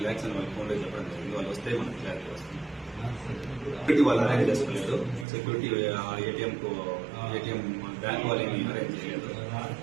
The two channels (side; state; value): left; drops out; at 5.2 s